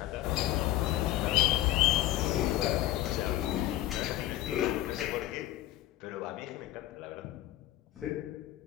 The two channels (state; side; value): quieter; right; 14.8 dB